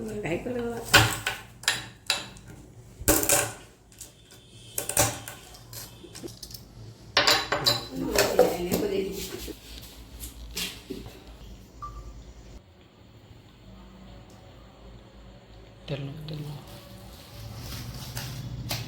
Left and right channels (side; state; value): both; identical; correlation 1.00